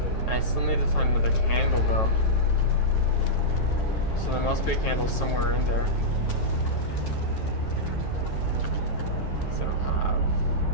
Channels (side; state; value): right; late; 9.2 ms